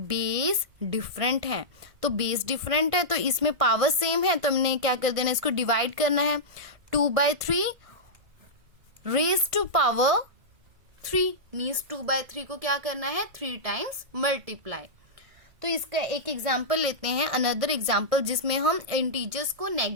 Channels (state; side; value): late; left; 1.6 ms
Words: different है, तो बेस डिफरेंट है तो इसमें पावर सेम है तो हमने क्या कर देना, इसको डिवाइड करना है, 2/3 रेज टू पावर 3 मीन्स 2/3 को क्या करना है, 3 टाइम्स मल्टीप्लाई। तो इसका एक एग्जाम्पल लेते हैं, अनदर एग्जाम्पल जिसमें हम इंटीजर्स को